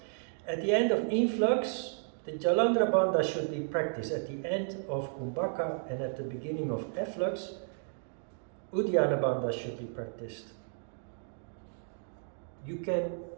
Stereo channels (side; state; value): left; silent; digital silence